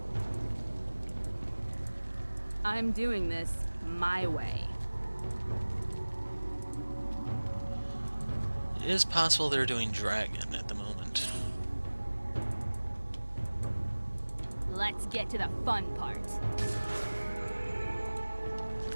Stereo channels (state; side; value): inverted; both; correlation -1.00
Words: I'm doing this my way. It is possible they're doing Dragon at the moment. Let's get to the fun part.